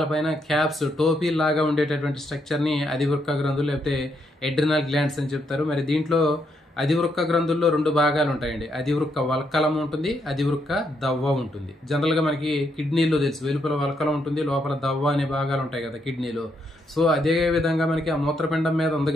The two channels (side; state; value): both; normal; correlation 0.77